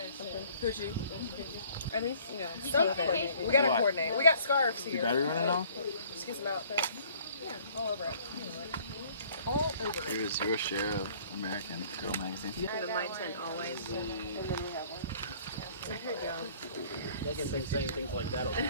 Coochie. Or at least, you know, something. We gotta coordinate. We got scarves here. Battery running off? Just get some outfits. Yeah, all over it. All over it. Here's your share of American Girl magazine. the my tent always. Megan thinks saying things like that will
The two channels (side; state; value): both; inverted; correlation -0.55